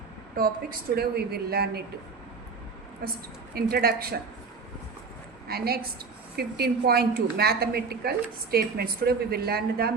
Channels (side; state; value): left; quieter; 4.8 dB